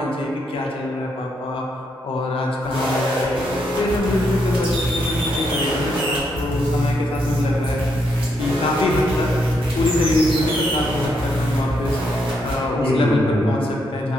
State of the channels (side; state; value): both; normal; correlation 0.77